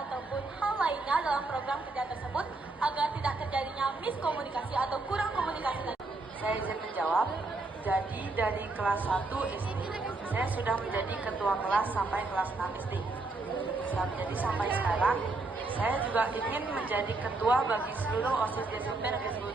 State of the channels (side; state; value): left; quieter; 3.3 dB